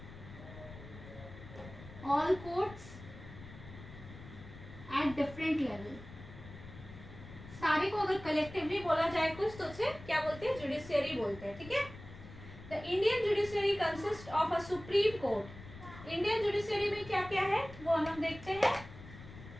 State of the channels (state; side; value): noise; left; rumble, 15 dB below the sound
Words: all courts at different level. सारे को अगर कलेक्टिवली बोला जाए कुछ तो उसे क्या बोलते हैं? जुडिशियरी बोलते हैं, ठीक है। The Indian judiciary consist of a supreme court. Indian judiciary में क्या क्या है वो हम देखते हैं।